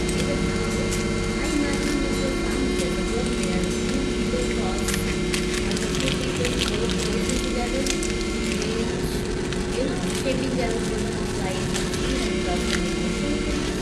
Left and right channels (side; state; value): both; identical; correlation 1.00